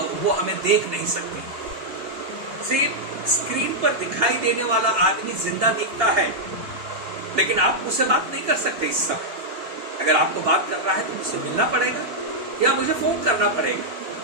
वो हमें देख नहीं सकती। सिर्फ स्क्रीन पर दिखाई देने वाला आदमी जिंदा दिखता है, लेकिन आप मुझसे बात नहीं कर सकते इस समय। अगर आपको बात कर रहा है तो मुझसे मिलना पड़ेगा, या मुझे फोन करना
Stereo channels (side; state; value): left; late; 2.8 ms